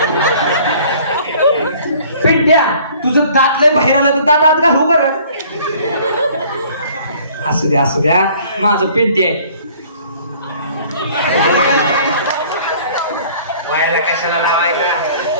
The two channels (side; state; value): both; inverted; correlation -0.53